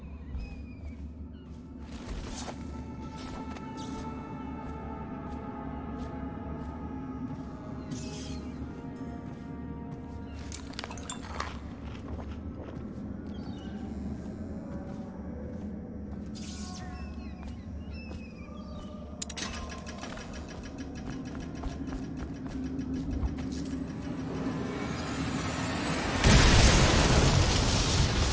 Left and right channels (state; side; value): identical; both; correlation 1.00